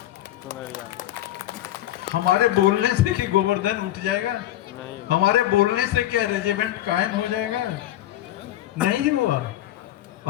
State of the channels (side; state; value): right; quieter; 13.8 dB